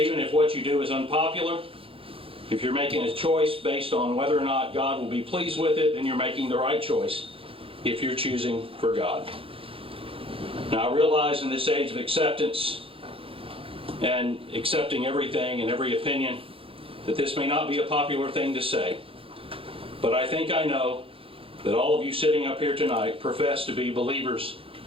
if what you do is unpopular, if you're making a choice based on whether or not God will be pleased with it, then you're making the right choice if you're choosing for God. Now I realize in this age of acceptance and accepting everything and every opinion that this may not be a popular thing to say, but I think I know that all of you sitting up here tonight profess to be believers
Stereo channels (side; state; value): left; late; 0.27 ms